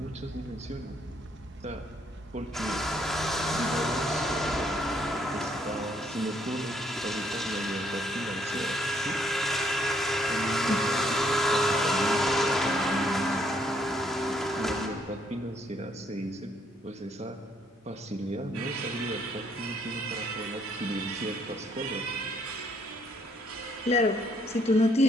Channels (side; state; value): both; normal; correlation 0.69